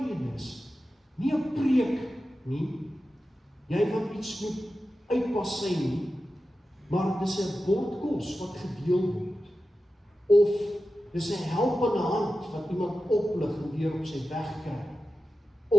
nie 'n preek nie, jy wat iets moet uitpassy nie, maar dis 'n bord kos wat gedeel word, of dis 'n helpende hand wat iemand oplig en weer op sy weg kry,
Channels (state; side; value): normal; both; correlation 0.93